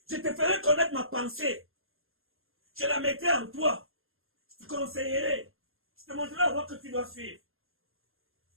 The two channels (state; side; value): late; left; 0.60 ms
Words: Je te ferai connaître ma pensée. Je la mettrai en toi. Je te conseillerai. Je te montrerai la voie que tu dois suivre.